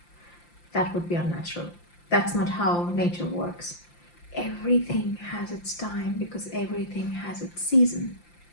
That would be unnatural. That's not how nature works. Everything has its time because everything has its season.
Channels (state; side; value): late; right; 5.8 ms